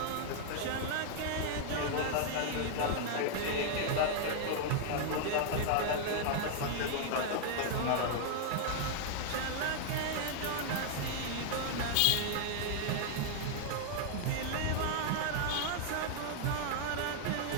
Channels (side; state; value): both; different; correlation -0.01